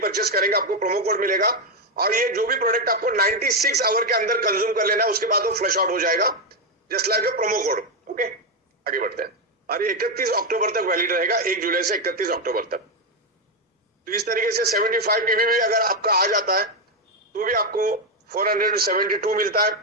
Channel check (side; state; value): both; normal; correlation 0.05